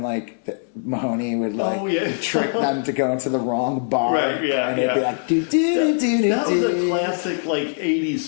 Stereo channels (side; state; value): right; silent; 64 dB below the other